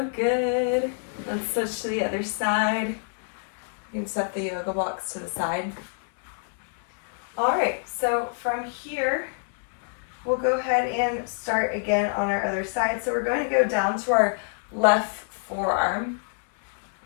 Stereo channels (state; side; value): silent; right; 61 dB below the other